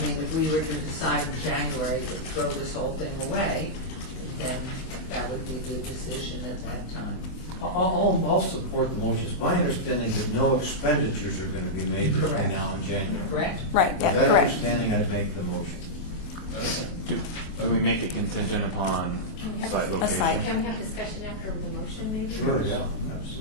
mean, if we were to decide in January to throw this whole thing away, then that would be the decision at that time. I'll support the motion. It's my understanding that no expenditures are going to be made between Correct. now and January. Correct? Right, With yeah, that correct. understanding, I'd make the motion. Do we make it contingent upon site location? site. Can we have discussion after the motion, maybe? Yeah,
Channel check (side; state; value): right; late; 24 ms